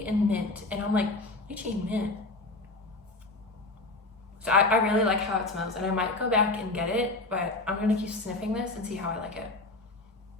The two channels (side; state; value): right; quieter; 3.0 dB